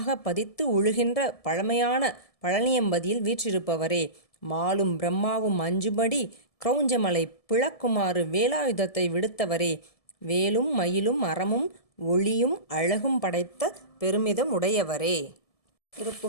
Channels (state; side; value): late; right; 1.7 ms